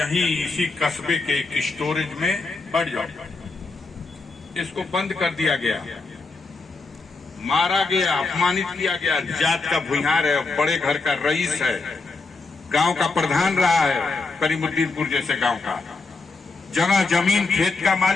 इसी कस्बे के एक स्टोरेज में बढ़ जाओ। इसको बंद कर दिया गया, मारा गया, अपमानित किया गया। जात का भूमिहार है, बड़े घर का रईस है, गांव का प्रधान रहा है, करीमुद्दीनपुर जैसे गांव का, जगह जमीन खेत का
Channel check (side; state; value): right; quieter; 3.8 dB